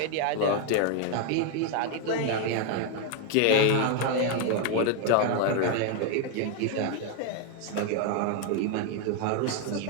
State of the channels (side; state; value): both; different; correlation 0.01